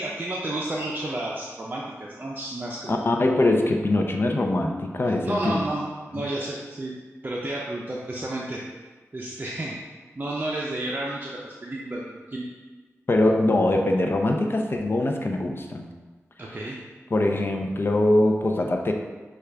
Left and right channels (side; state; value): both; normal; correlation 0.89